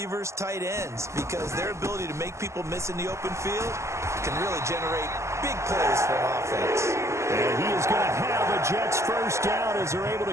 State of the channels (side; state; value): left; late; 0.14 ms